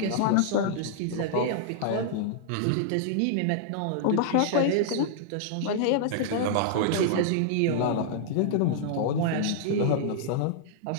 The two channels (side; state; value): both; different; correlation -0.01